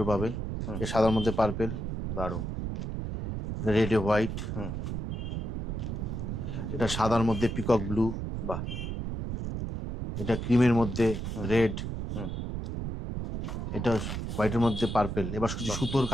পাবেন। এই সাদার মধ্যে পার্পেল, দারুণ। রেড এ হোয়াইট, এটা সাদার মধ্যে পিকক ব্লু, বাহ, এটা ক্রিমের মধ্যে রেড, এটা হোয়াইটের মধ্যে পার্পেল। এবার কিছু সুতোর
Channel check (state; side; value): noise; right; rumble, 4 dB below the sound